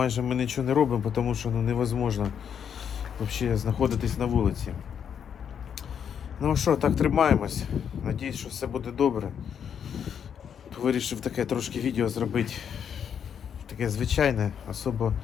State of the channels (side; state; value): right; quieter; 8.0 dB